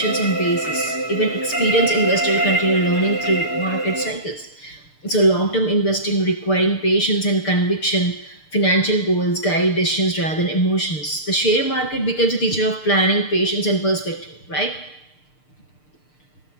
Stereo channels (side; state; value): right; late; 6.7 ms